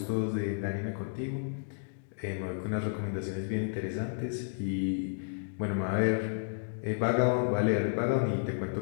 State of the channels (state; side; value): silent; right; digital silence